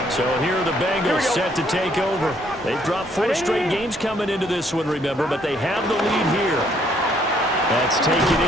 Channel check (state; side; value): normal; both; correlation 0.67